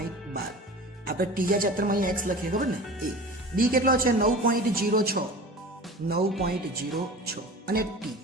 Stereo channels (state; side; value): normal; both; correlation 0.36